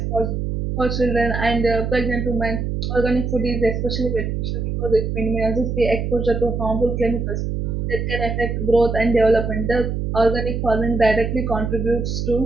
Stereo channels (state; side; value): noise; right; hum, 2 dB below the sound